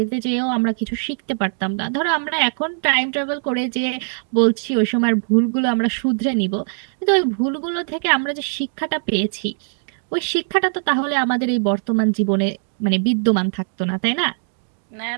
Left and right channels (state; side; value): silent; left; digital silence